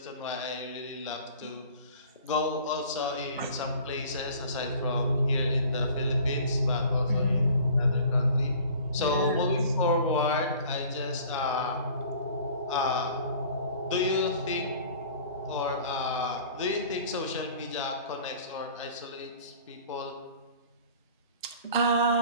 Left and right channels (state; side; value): inverted; both; correlation -0.47